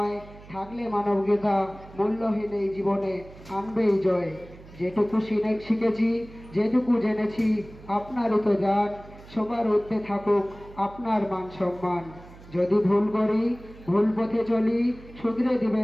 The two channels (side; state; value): right; noise; hum, 20 dB below the sound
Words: থাকলে মানবিকতা মূল্যহীন এই জীবনে আনবেই জয়। যেটুকু শিখেছি, যেটুকু জেনেছি, আপনারই তো জান। সবার ঊর্ধ্বে থাকুক আপনার মান সম্মান। যদি ভুল করি, ভুল পথে চলি, শুধরে